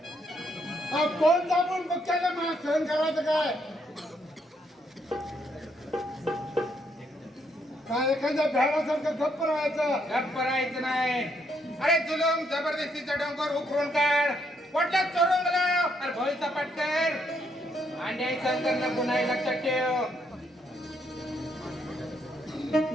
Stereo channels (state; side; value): normal; both; correlation 0.73